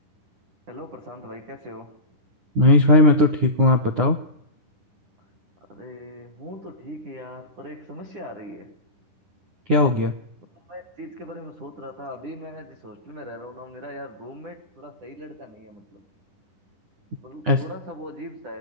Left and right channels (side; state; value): left; late; 9.8 ms